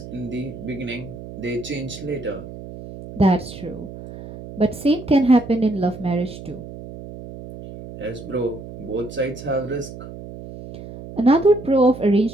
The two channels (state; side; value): noise; right; hum, 13 dB below the sound